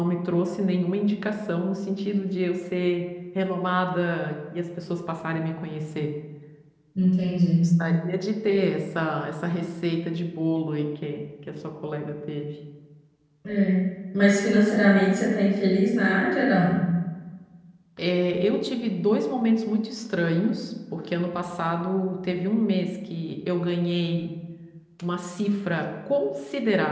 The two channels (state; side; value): identical; both; correlation 1.00